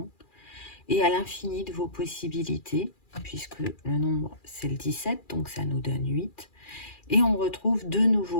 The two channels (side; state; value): right; late; 2.4 ms